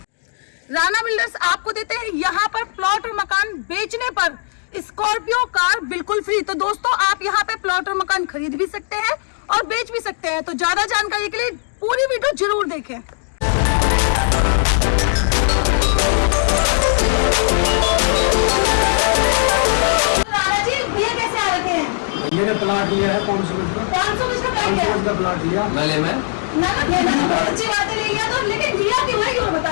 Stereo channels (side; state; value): right; silent; 62 dB below the other